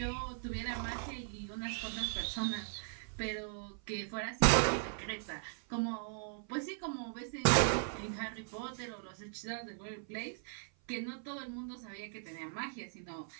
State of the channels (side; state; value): left; silent; 52 dB below the other